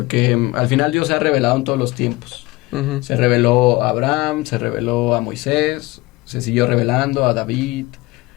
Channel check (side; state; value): right; quieter; 21.3 dB